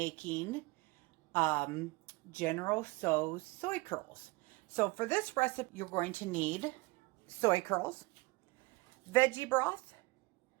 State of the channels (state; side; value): quieter; left; 24.0 dB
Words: um, General Tso's soy curls. So for this recipe, you're going to need soy curls, veggie broth,